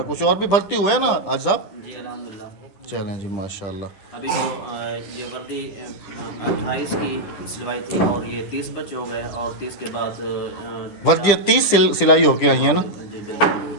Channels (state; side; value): late; right; 10 ms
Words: कुछ और भी भर्ती हुए हैं ना आज साहब? जी अल्हम्दुलिल्लाह। चलें जी माशाल्लाह। अभी तो ये वर्दी 28 की सिलवाई थी और ये 30 बच्चे हो गए और 30 के बाद वर्दी 30 सिलाई होके आई है ना? जी बिल्कुल।